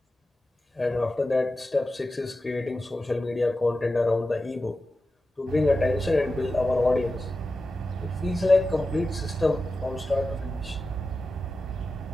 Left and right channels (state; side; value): normal; both; correlation 0.93